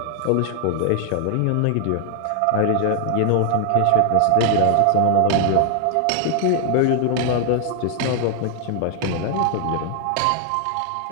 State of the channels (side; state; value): both; different; correlation 0.00